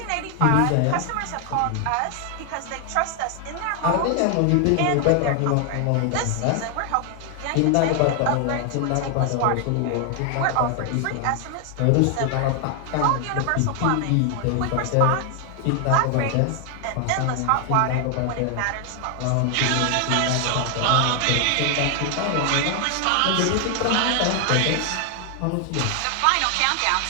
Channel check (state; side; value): different; both; correlation 0.00